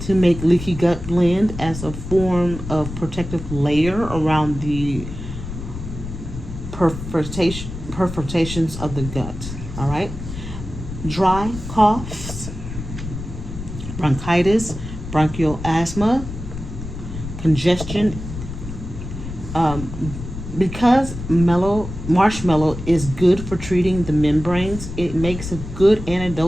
to make leaky gut blend as a form of protective layer around the perforations of the gut. All right. Dry coughs, bronchitis, bronchial asthma, congestion. Because marshmallow is good for treating the membranes, it makes a good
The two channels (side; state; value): left; noise; rumble, 9 dB below the sound